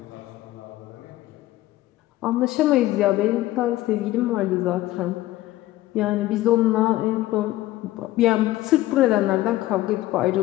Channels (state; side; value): quieter; right; 16.2 dB